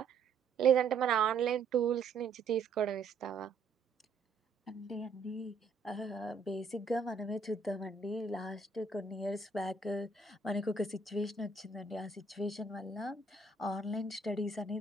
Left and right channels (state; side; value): quieter; left; 4.2 dB